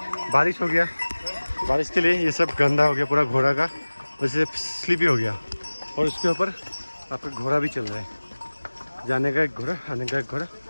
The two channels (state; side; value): inverted; both; correlation -1.00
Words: बारिश हो गया, बारिश के लिए ये सब गंदा हो गया पूरा घोड़ा का, वैसे स्लिपी हो गया। और उसके ऊपर आपका घोड़ा भी चल रहा है, जाने का एक घोड़ा, आने का एक घोड़ा,